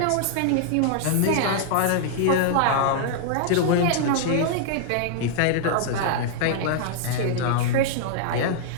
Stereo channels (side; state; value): both; different; correlation -0.01